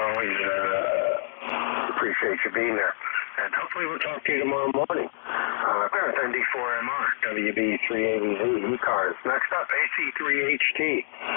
always, appreciate you being there. And hopefully we'll talk to you tomorrow morning. With ND4MR, WB3AVZ, ECARS. Next up, AC3HT.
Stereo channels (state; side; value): silent; right; digital silence